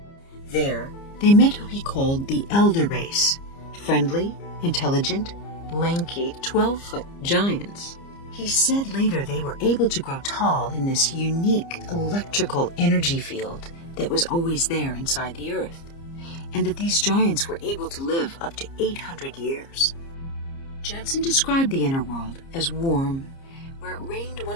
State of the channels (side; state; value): right; late; 30 ms